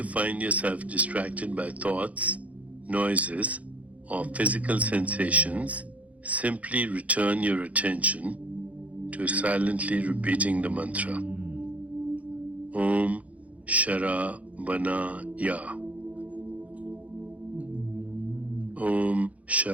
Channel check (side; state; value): left; late; 0.068 ms